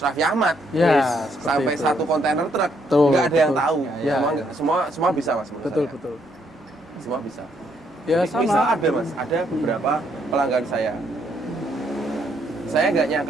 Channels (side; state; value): both; normal; correlation 0.72